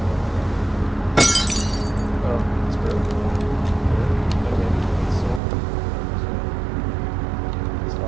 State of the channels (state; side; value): drops out; left; at 5.4 s